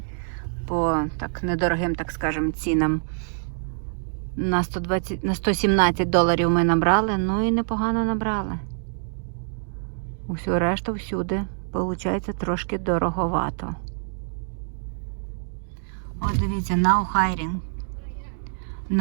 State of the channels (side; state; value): left; silent; digital silence